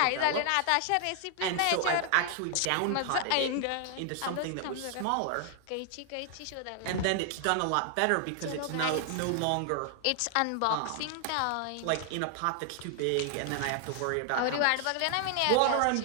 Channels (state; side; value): different; both; correlation 0.00